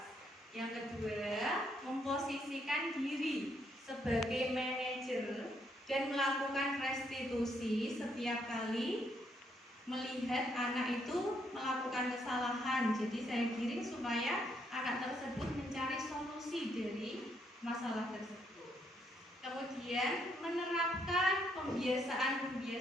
Yang kedua, memposisikan diri sebagai manajer dan melakukan restitusi setiap kali melihat anak itu melakukan kesalahan. Jadi saya giring supaya anak tersebut mencari solusi dari masalah tersebut. Kemudian menerapkan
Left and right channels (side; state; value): both; normal; correlation 0.74